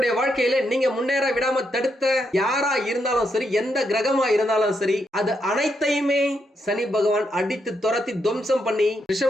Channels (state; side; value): normal; both; correlation 0.80